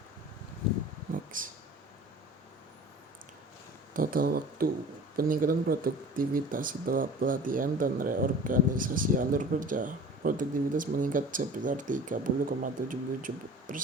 Next. Total waktu peningkatan produktivitas setelah pelatihan dan reorganisasi alur kerja. Produktivitas meningkat sebesar 30,77%,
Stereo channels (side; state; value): both; normal; correlation 0.42